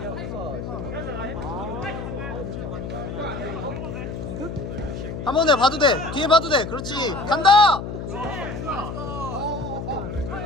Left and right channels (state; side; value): noise; left; hum, 6 dB below the sound